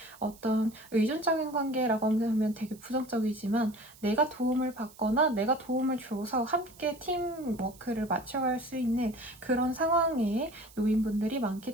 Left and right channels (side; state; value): right; noise; hiss, 23 dB below the sound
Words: 어떤 의존적인 관계라고 하면 되게 부정적이지만, 내가 도움을 받거나 내가 도움을 줘서 함께 팀워크를 맞춰갈 수 있는 그런 상황에 놓인 분들이